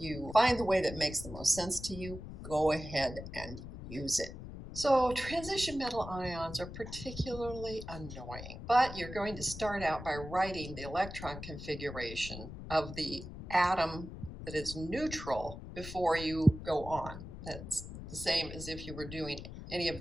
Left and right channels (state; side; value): noise; left; rumble, 11 dB below the sound